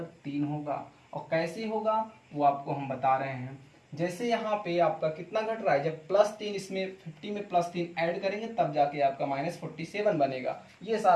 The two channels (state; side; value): identical; both; correlation 1.00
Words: 3 होगा। और कैसे होगा वो आपको हम बता रहे हैं। जैसे यहाँ पे आपका कितना घट रहा है, जब +3 इसमें 50 में +3 ऐड करेंगे तब जाके आपका -47 बनेगा, ये